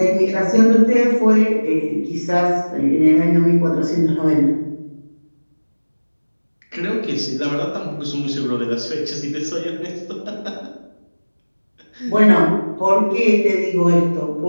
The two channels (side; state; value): both; inverted; correlation -1.00